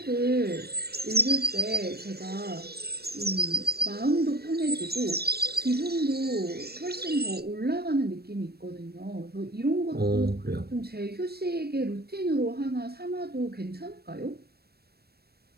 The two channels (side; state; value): left; late; 0.46 ms